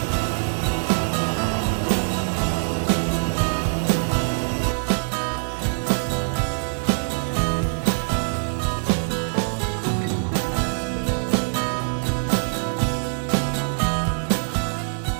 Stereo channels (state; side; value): silent; left; digital silence